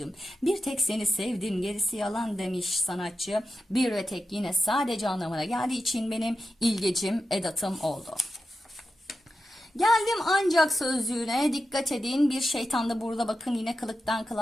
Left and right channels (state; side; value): normal; both; correlation 0.91